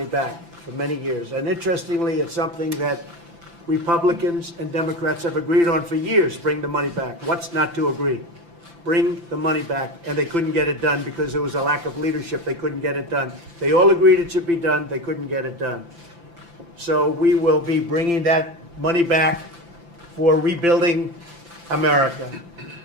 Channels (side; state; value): left; late; 5.9 ms